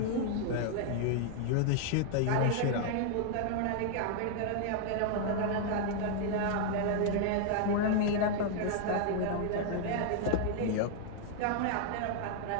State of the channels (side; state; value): both; different; correlation 0.00